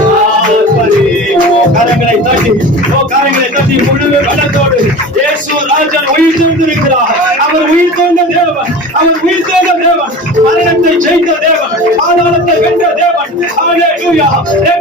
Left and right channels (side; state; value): both; normal; correlation 0.35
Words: ஆர்ப்பரிப்போம். கரங்களை தட்டி சக்தி முழு பலத்தோடு இயேசு ராஜன் உயிர் தெழுந்திருக்கிறார். அவர் உயிர் தெழுந்த தேவன், அவர் உயிர் தெழுந்த தேவன், மரணத்தை ஜெயித்த தேவன், பாதாளத்தை வென்ற தேவன். ஹல்லேலூயா.